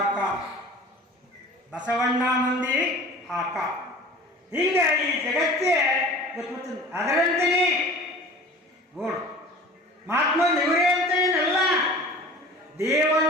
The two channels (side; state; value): both; normal; correlation 0.42